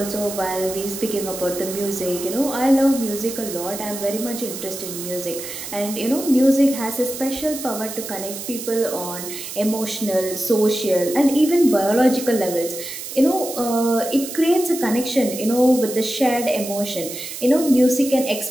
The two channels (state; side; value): noise; right; hiss, 9 dB below the sound